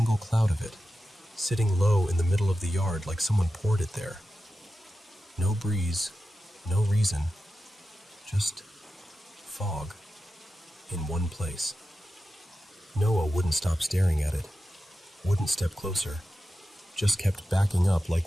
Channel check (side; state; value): both; normal; correlation 0.92